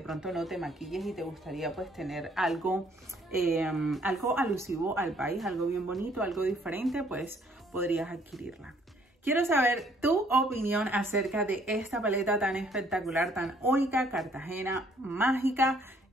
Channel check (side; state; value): both; normal; correlation 0.63